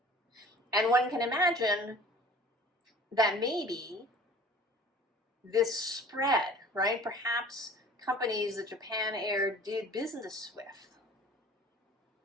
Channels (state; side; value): normal; both; correlation 0.46